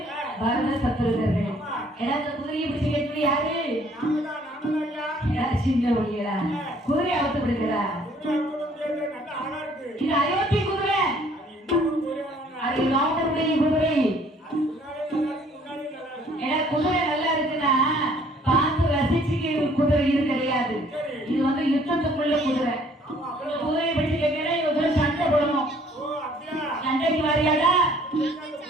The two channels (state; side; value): normal; both; correlation 0.59